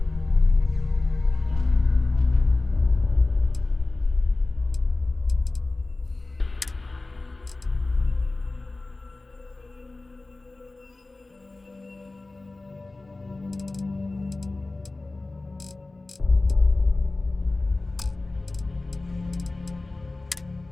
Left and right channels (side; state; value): right; quieter; 3.2 dB